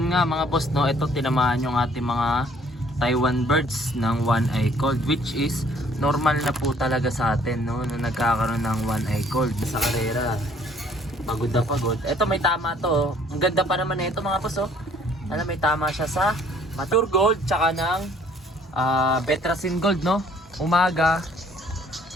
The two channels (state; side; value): normal; both; correlation 0.59